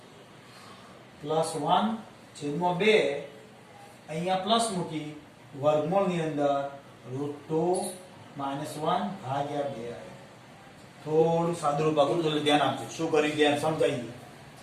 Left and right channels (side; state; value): both; identical; correlation 1.00